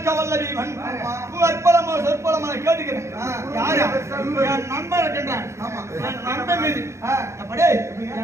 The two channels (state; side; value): late; left; 0.14 ms